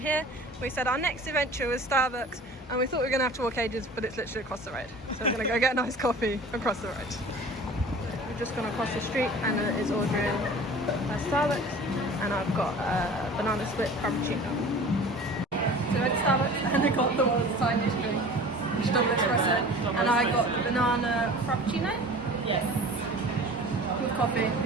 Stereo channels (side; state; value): both; normal; correlation 0.42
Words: We said our next adventure was Starbucks and we thought we were going to have to walk ages, but it's literally across the road. So we're going to go get a nice coffee across the road. We've just gone across the street. Anna is ordering a Starbucks and I've got a banana split frappuccino. So at Starbucks and I got the world's tiniest drink, which is double espresso, and I got the banana frappuccino Yes. with coffee